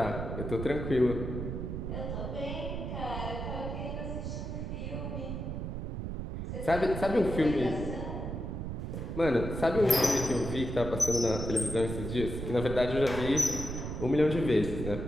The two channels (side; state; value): right; noise; rumble, 5 dB below the sound